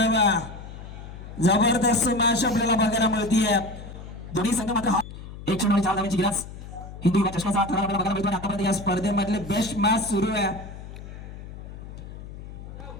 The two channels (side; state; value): left; noise; hum, 13 dB below the sound